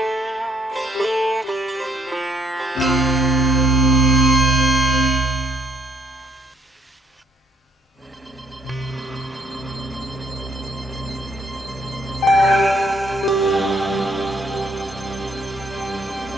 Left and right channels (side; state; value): both; normal; correlation 0.67